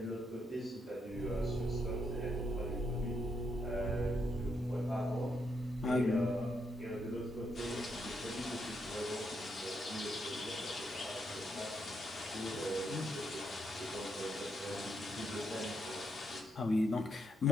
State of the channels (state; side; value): normal; both; correlation 0.78